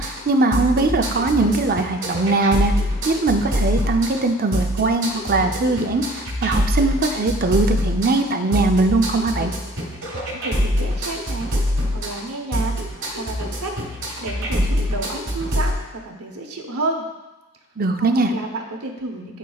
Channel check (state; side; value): normal; both; correlation 0.52